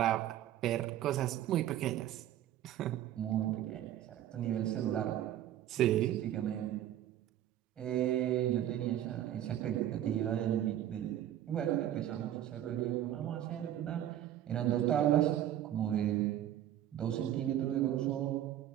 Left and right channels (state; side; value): quieter; left; 12.0 dB